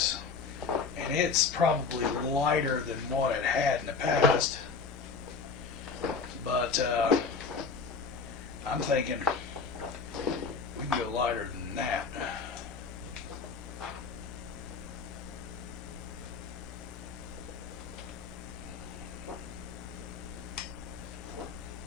And it's probably lighter than what it had in the past. But I'm thinking we can go lighter than that.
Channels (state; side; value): quieter; right; 5.1 dB